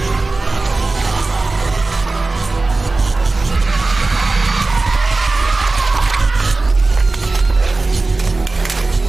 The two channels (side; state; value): left; quieter; 3.4 dB